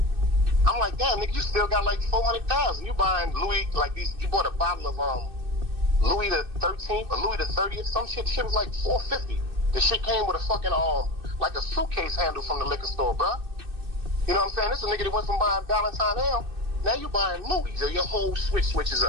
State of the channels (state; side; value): late; left; 2.6 ms